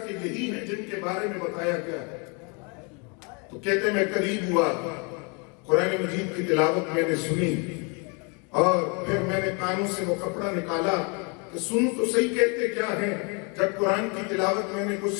یہی ہیں جن کے بارے میں بتایا گیا ہے۔ تو کہتے میں قریب ہوا، قرآن مجید کی تلاوت میں نے سنی، اور پھر میں نے کانوں سے وہ کپڑا نکالا کہ سنوں تو صحیح کہتے کیا ہیں۔ جب قرآن کی تلاوت میں نے کچھ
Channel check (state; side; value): quieter; right; 33.1 dB